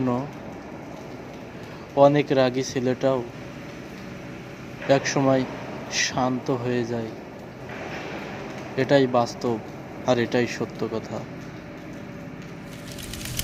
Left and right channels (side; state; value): both; identical; correlation 1.00